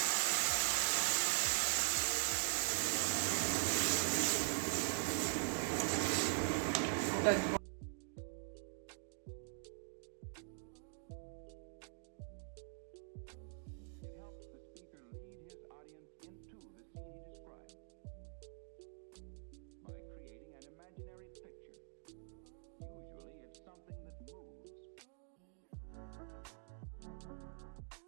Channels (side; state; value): left; silent; digital silence